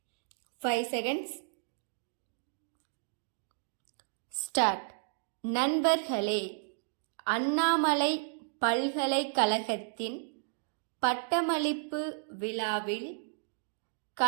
5 seconds. Start. நண்பர்களே, அண்ணாமலை பல்கலைக்கழகத்தின் பட்டமளிப்பு விழாவில்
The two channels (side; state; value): left; silent; digital silence